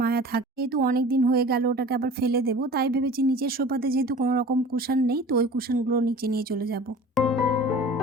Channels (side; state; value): both; normal; correlation 0.41